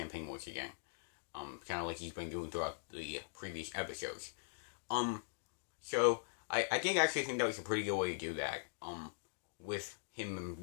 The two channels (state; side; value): silent; right; digital silence